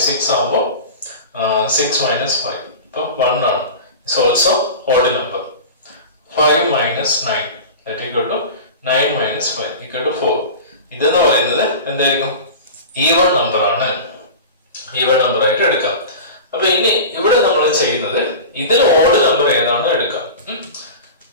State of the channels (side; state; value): both; inverted; correlation -0.32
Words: 6 ആകുമ്പോൾ 6 മൈനസ് 5 ഇപ്പോൾ 1 ആണ്. It's also odd number. 5 minus 9 that equal to 9 minus 5 equal to 4. ഇതെന്ന് പറയുന്നത് എന്തായിരിക്കും? ഈവൺ നമ്പർ ആണ്. ഈവൺ നമ്പർ ആയിട്ട് എടുക്കാം. അപ്പൊ ഇനി ഇവിടെ നമ്മൾ ചെയ്യുന്നത് ഇതിൽ ഓഡ് നമ്പർ ഏതാണ് എടുക്കാം.